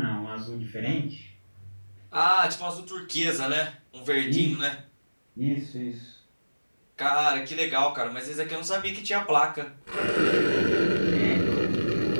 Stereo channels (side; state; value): both; inverted; correlation -1.00